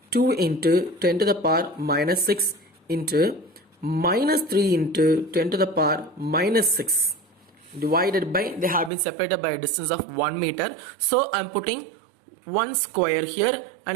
2 into 10 to the power minus 6 into minus 3 into 10 to the power minus 6 divided by, they have been separated by a distance of 1 meter. So I am putting 1 square here and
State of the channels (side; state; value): left; drops out; at 8.9 s